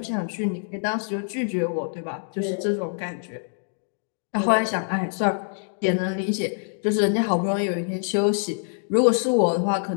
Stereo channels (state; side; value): silent; right; digital silence